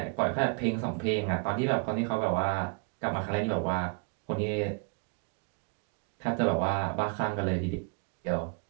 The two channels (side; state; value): left; quieter; 36.3 dB